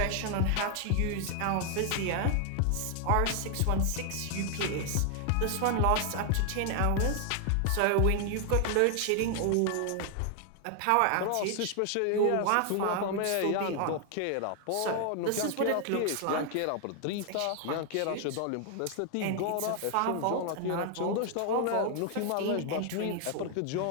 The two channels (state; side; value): different; both; correlation 0.00